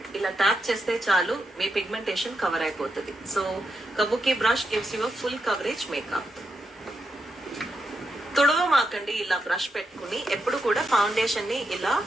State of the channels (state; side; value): normal; both; correlation 0.85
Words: ఇలా ట్యాప్ చేస్తే చాలు మీ పిగ్మెంటేషన్ కవర్ అయిపోతుంది. So kabuki brush gives you full coverage makeup. తుడవమాకండి ఇలా బ్రష్ పెట్టుకుని, ఎప్పుడు కూడా ఫౌండేషన్ ని ఇలా